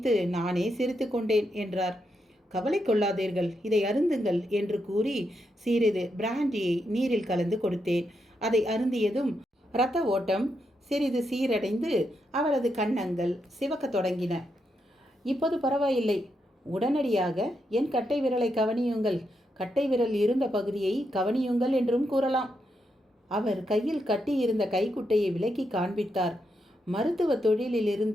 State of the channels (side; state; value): both; normal; correlation 0.82